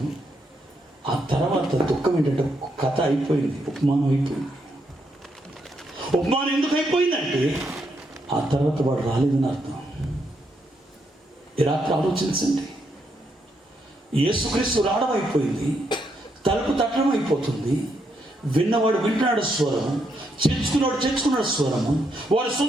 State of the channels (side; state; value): both; normal; correlation 0.78